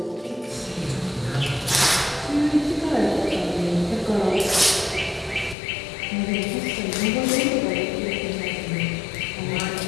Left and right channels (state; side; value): drops out; right; at 5.6 s